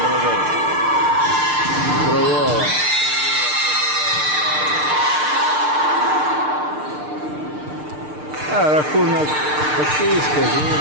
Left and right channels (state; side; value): late; left; 6.7 ms